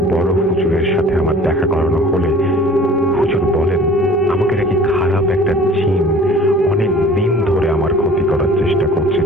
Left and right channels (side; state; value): both; normal; correlation 0.47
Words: বড় হুজুরের সাথে আমার দেখা করানো হলে হুজুর বলেন আমাকে নাকি খারাপ একটা জিন অনেক দিন ধরে আমার ক্ষতি করার চেষ্টা করছে,